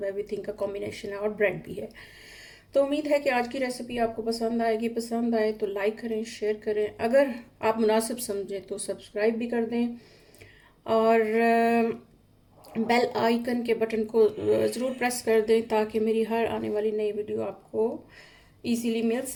एवरीथिंग का कॉम्बिनेशन है और ब्रेड भी है। तो उम्मीद है कि आज की रेसिपी आपको पसंद आएगी। पसंद आए तो लाइक करें, शेयर करें, अगर आप मुनासिब समझें तो सब्सक्राइब भी कर दें और बेल आइकन के बटन को ज़रूर प्रेस कर दें ताकि मेरी हर आने वाली नई वीडियो आपको इजीली मिल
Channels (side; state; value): both; identical; correlation 1.00